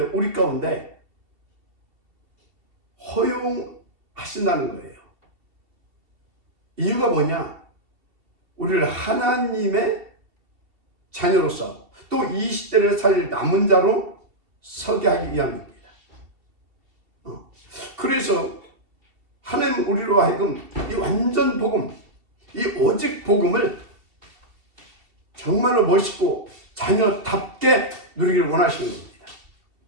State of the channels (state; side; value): late; left; 2.7 ms